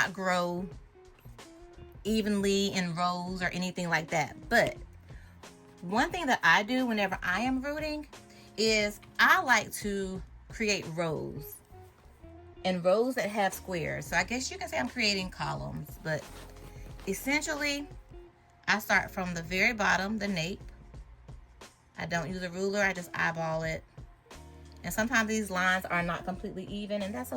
grow evenly in rows or anything like that, but one thing that I do whenever I am rooting is I like to create rows, and rows that have squares. So I guess you can say I'm creating columns, but essentially I start from the very bottom, the nape. I don't use a ruler, I just eyeball it. And sometimes these lines are not completely even, and that's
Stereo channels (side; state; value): both; identical; correlation 1.00